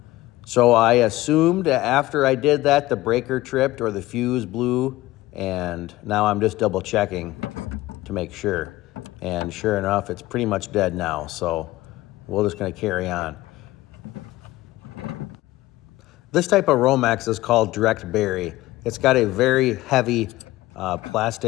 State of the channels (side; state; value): right; quieter; 17.5 dB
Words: So I assumed that after I did that, the breaker tripped or the fuse blew, and now I'm just double checking to make sure. And sure enough, it's pretty much dead now, so we're just gonna carry on. This type of Romex is called direct bury. It's got a very heavy